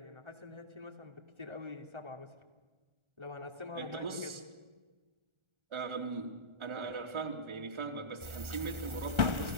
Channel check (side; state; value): left; late; 1.4 ms